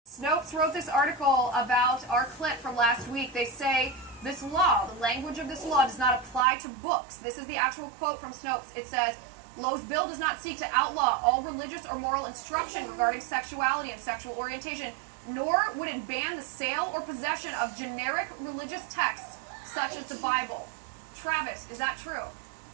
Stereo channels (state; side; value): drops out; left; at 6.5 s